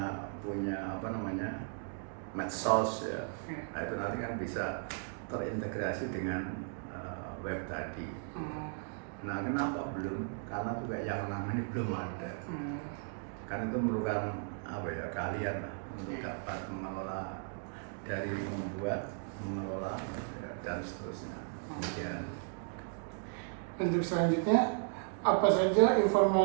medsos ya. Nah, itu nanti kan bisa terintegrasi dengan web tadi. Nah, kenapa belum? Karena juga yang ini belum ada. Karena itu merupakan kalian lah untuk dapat mengelola, dari membuat, mengelola ya, dan seterusnya. Kemudian Untuk selanjutnya, apa saja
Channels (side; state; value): left; silent; 54 dB below the other